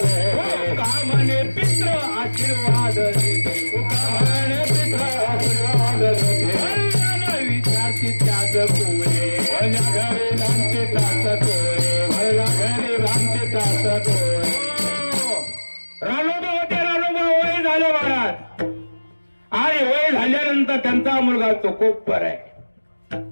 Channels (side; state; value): both; inverted; correlation -1.00